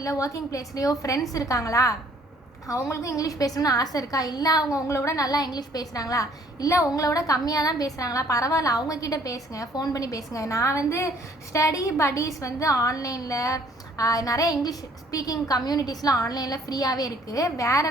இல்லை ஒர்க்கிங் பிளேஸ்லேயோ ஃப்ரெண்ட்ஸ் இருக்காங்களா, அவங்களுக்கும் இங்கிலீஷ் பேசணும்னு ஆசை இருக்கா, இல்லை அவங்க உங்களை விட நல்லா இங்கிலீஷ் பேசுகிறாங்களா, இல்லை உங்களை விட கம்மியாக தான் பேசுகிறாங்களா, பரவாயில்ல, அவங்கக்கிட்ட பேசுங்க, ஃபோன் பண்ணி பேசுங்க. நான் வந்து ஸ்டடி பட்டீஸ் வந்து ஆன்லைனில் நிறைய இங்கிலீஷ் ஸ்பீக்கிங் கம்யூனிட்டிஸ்லாம் ஆன்லைனில் ஃப்ரீயாகவே இருக்குது.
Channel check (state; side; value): normal; both; correlation 0.59